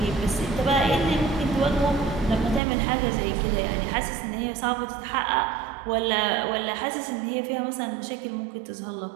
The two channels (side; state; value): left; drops out; at 2.6 s